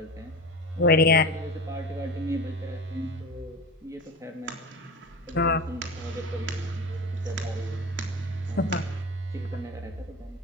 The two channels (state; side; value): normal; both; correlation 0.29